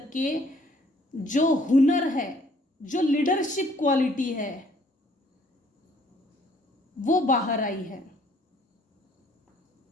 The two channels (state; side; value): normal; both; correlation 0.61